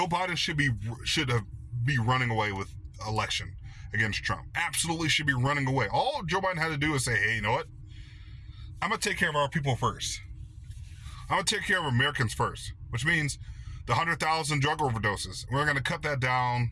Biden should be running away with election against Trump. Absolutely should be running away. All Joe Biden had to do is say, hey, you know what? I'm going to take care of our people first. I'm going to take care of Americans first, which means the 100,000 drug overdoses. We're going to cut that down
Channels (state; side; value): identical; both; correlation 1.00